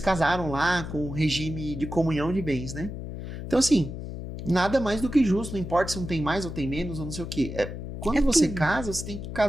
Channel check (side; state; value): left; noise; hum, 8 dB below the sound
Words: casaram lá com o regime de comunhão de bens, né? Então, assim, nada mais do que justo, não importa se um tem mais ou tem menos, ou não sei o quê. Quando você casa, você tem que